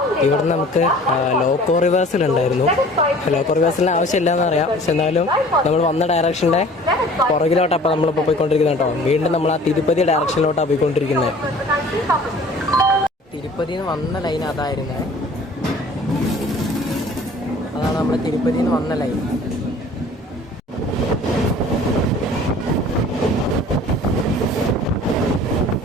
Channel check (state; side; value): normal; both; correlation 0.48